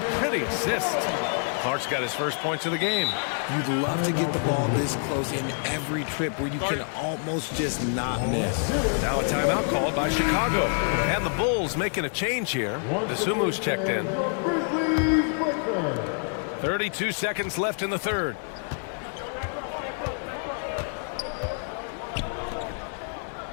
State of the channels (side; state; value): right; silent; 60 dB below the other